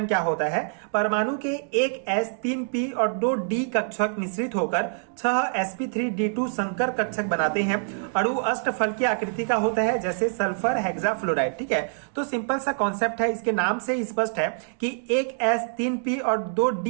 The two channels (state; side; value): silent; left; 61 dB below the other